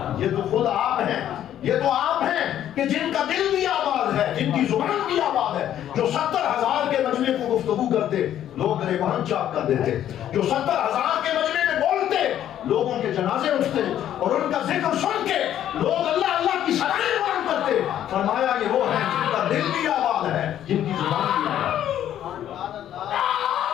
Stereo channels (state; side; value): quieter; right; 11.1 dB